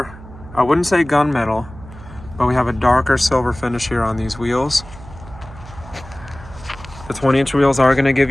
I wouldn't say gunmetal, but we have a darker silver finish here on these wheels. The 20-inch wheels are going to give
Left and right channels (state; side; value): noise; right; hum, 17 dB below the sound